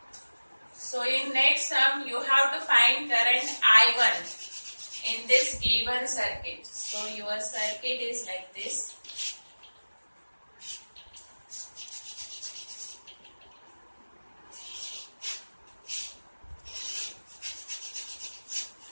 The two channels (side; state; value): both; inverted; correlation -1.00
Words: So in next sum you have to find current I1 in this given circuit. So your circuit is like this.